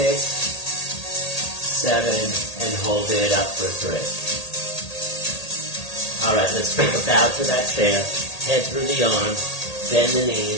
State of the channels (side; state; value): right; late; 1.8 ms